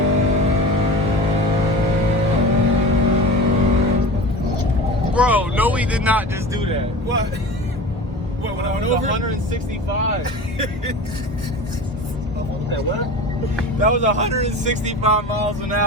Bro, no, we did not just do that. What? What, when I went over? 165. What? That was 165 miles an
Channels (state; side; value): normal; both; correlation 0.34